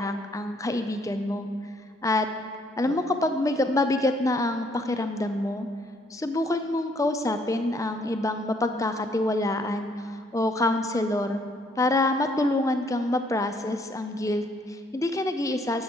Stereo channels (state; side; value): normal; both; correlation 0.66